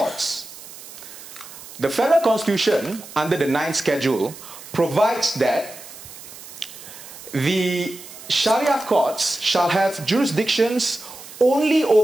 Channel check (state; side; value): noise; right; hiss, 16 dB below the sound